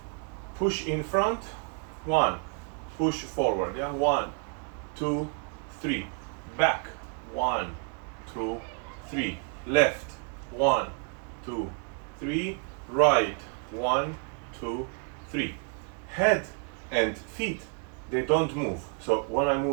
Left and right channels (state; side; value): quieter; left; 39.9 dB